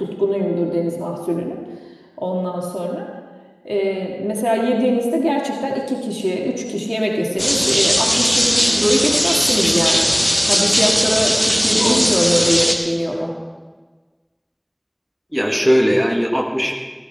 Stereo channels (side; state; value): both; identical; correlation 1.00